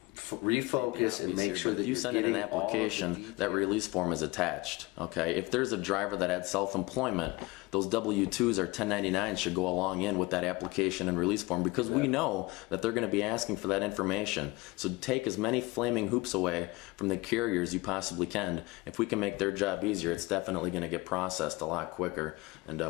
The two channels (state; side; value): quieter; right; 22.7 dB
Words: refocus and make sure that if you send in an application, that release form is attached. Okay, if there's a driver that had self-employment, those W-2s or 1099s should go along in with that application and release form, because we know that they're going to be asking for that information. So take as many flaming hoops away from the carriers you possibly can. If we can make their job easier, it's definitely going to get processed a lot quicker and